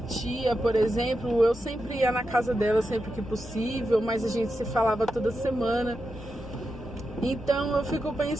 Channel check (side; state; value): both; normal; correlation 0.88